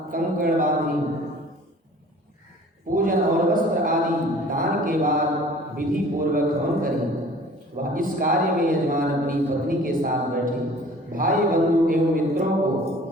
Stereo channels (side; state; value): both; normal; correlation 0.48